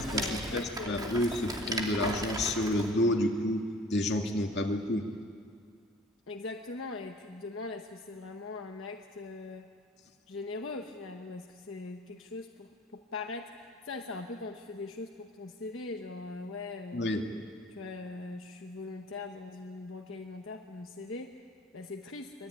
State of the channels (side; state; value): both; normal; correlation 0.49